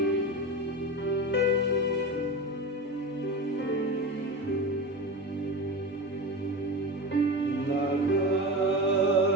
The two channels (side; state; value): both; normal; correlation 0.25